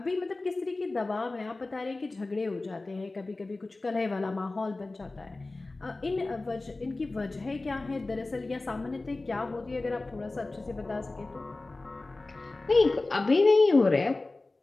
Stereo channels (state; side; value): quieter; right; 3.2 dB